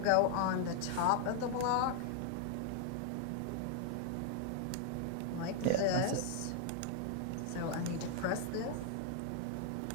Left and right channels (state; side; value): different; both; correlation 0.00